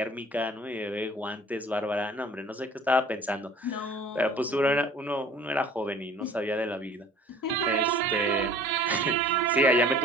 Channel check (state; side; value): normal; both; correlation 0.49